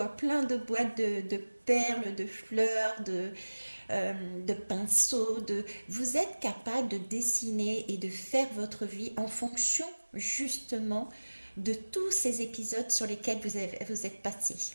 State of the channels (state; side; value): inverted; both; correlation -1.00